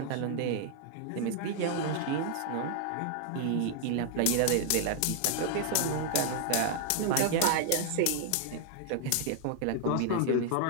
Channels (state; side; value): different; both; correlation -0.01